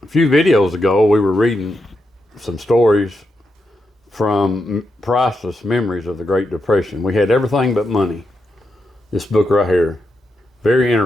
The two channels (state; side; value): normal; both; correlation 0.84